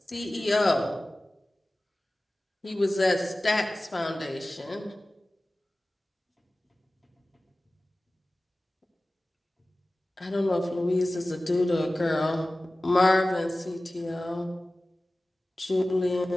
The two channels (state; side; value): normal; both; correlation 0.97